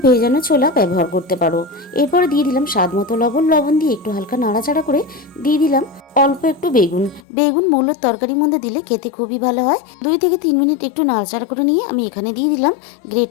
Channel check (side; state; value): right; drops out; at 7.2 s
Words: ভেজানো ছোলা ব্যবহার করতে পারো। এরপরে দিয়ে দিলাম স্বাদ মতো লবণ দিয়ে একটু হালকা নাড়াচাড়া করে দিয়ে দিলাম অল্প একটু বেগুন মূলোর তরকারির মধ্যে দিলে খেতে খুবই ভালো হয়। 2 থেকে 3 মিনিট একটু নাড়াচাড়া করে নিয়ে আমি এখানে দিয়ে দিলাম গ্রেট